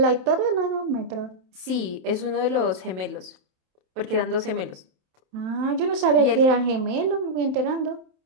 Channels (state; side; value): late; left; 27 ms